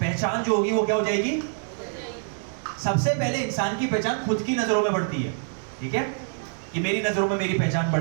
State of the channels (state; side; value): silent; left; 61 dB below the other